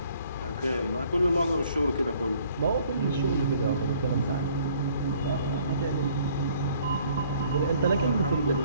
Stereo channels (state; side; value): inverted; both; correlation -0.59